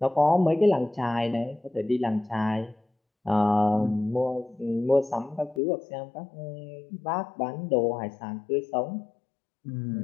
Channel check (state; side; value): drops out; right; at 5.6 s